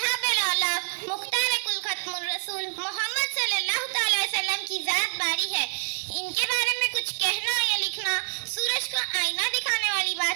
الاولیاء، مختار کل ختم الرسول محمد صلی اللہ تعالی وسلم کی ذات باری ہے۔ ان کے بارے میں کچھ کہنا یا لکھنا سورج کو آئینہ دکھانے والی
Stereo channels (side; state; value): left; silent; digital silence